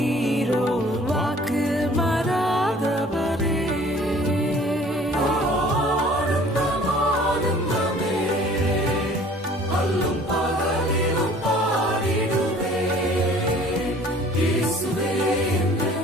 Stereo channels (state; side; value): normal; both; correlation 0.51